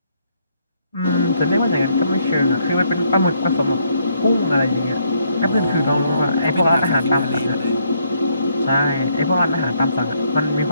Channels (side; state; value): both; inverted; correlation -0.71